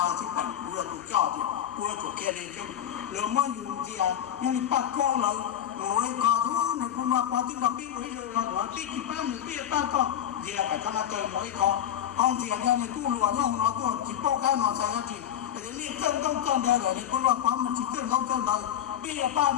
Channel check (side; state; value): right; quieter; 10.5 dB